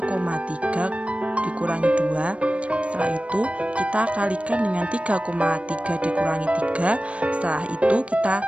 dikurangi 2. Setelah itu kita kalikan dengan 3,3 dikurangi 3. Setelah itu kita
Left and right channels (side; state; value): left; late; 0.062 ms